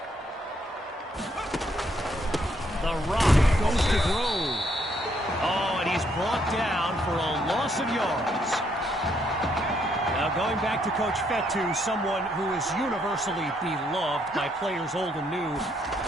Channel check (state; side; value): normal; both; correlation 0.72